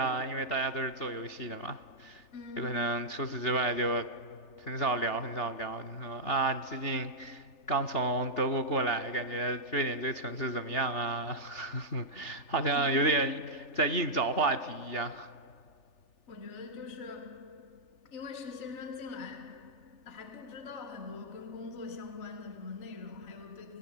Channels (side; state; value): right; late; 3.4 ms